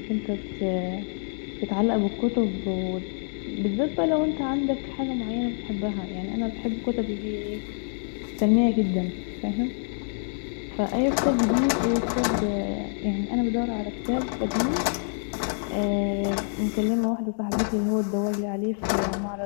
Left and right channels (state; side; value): silent; right; digital silence